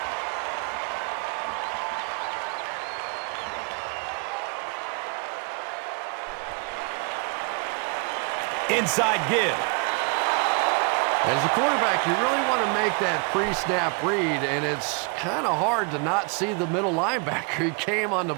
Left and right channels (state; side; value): quieter; left; 34.5 dB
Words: Inside give. As a quarterback, you really want to make that pre-snap read, and it's kind of hard to not see the middle linebacker. He came on the